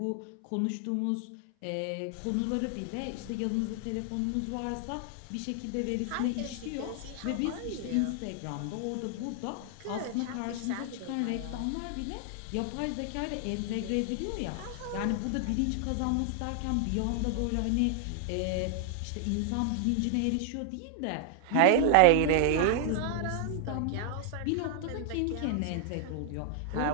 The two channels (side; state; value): both; different; correlation 0.00